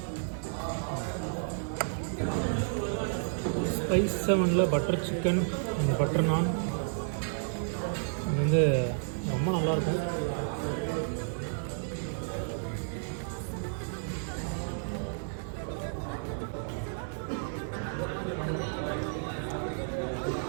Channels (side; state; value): left; silent; 57 dB below the other